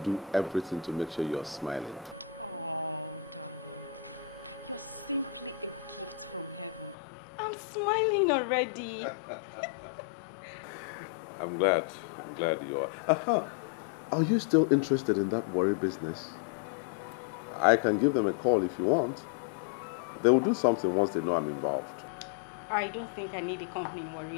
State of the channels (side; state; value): right; drops out; at 7.0 s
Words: everything to make sure you're smiling. Oh, darling. You're simply a gift from heaven. I'm smiling already. I'm glad you are. Are you still interested in that worry business? I can give them a call if you want. They will do something once they know I'm involved. I don't think I need a company in